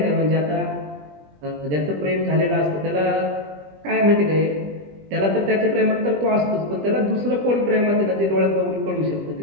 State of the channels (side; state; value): left; late; 20 ms